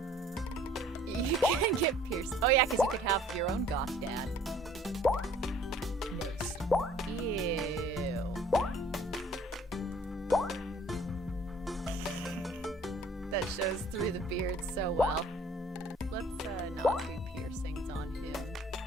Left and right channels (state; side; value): normal; both; correlation 0.55